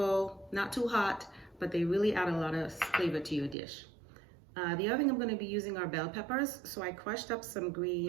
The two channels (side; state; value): left; drops out; at 3.6 s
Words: not too hot, but they really add a lot of flavor to your dish. The other thing I'm going to be using are bell peppers. So I crushed up some